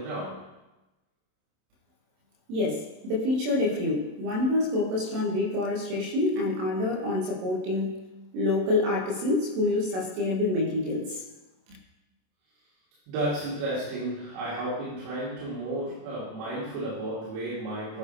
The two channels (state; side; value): late; left; 27 ms